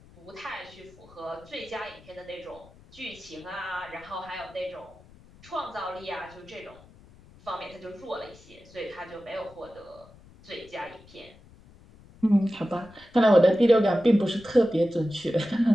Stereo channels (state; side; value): noise; left; rumble, 24 dB below the sound